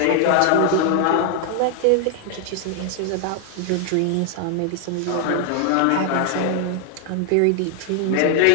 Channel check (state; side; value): different; both; correlation 0.00